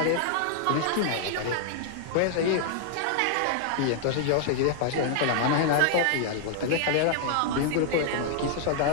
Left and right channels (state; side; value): different; both; correlation -0.01